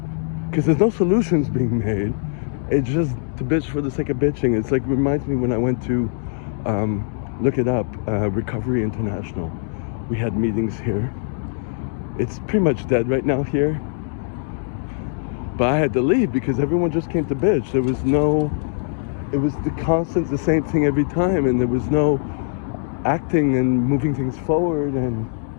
Because there's no solutions being made. It's just to bitch for the sake of bitching. It's like, reminds me when I went to, look it up, Recovery International. We had meetings here. It's pretty much dead right now here. But I had to leave because everyone just came to bitch. There was no, it was the same thing every time, and there was no acting and moving things forward, and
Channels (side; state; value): right; silent; digital silence